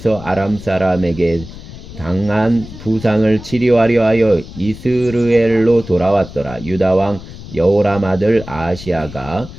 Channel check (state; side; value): noise; left; rumble, 14 dB below the sound